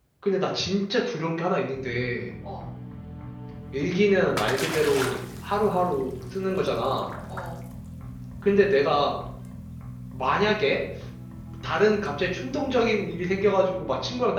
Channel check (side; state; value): both; identical; correlation 1.00